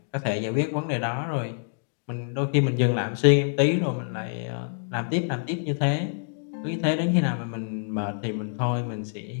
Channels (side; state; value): right; silent; digital silence